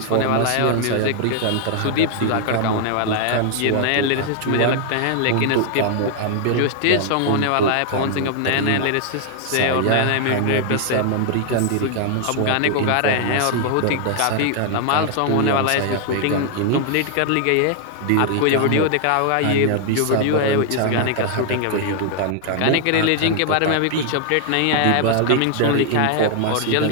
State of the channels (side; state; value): both; different; correlation 0.00